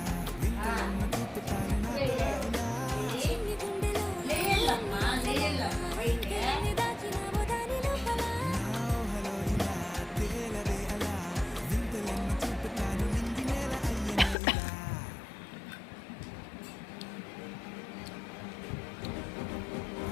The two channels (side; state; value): right; drops out; at 14.4 s